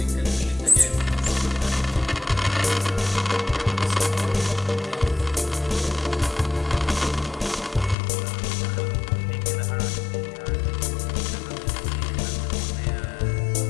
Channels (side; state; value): right; drops out; at 8.0 s